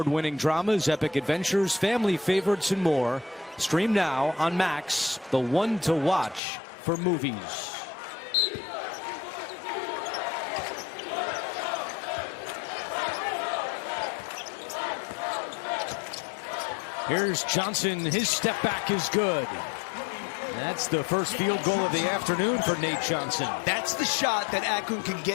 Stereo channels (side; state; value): right; drops out; at 6.4 s